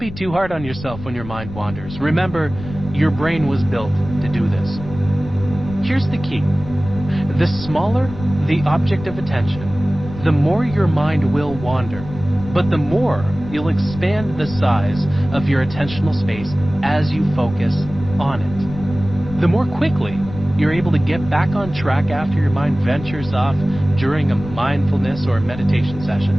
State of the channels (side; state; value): left; noise; rumble, 12 dB below the sound